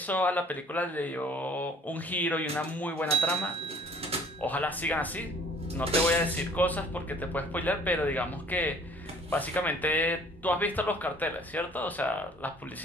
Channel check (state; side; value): normal; both; correlation 0.54